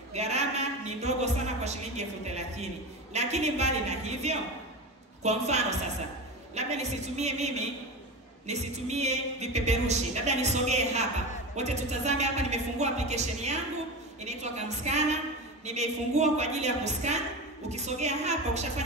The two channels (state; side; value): normal; both; correlation 0.25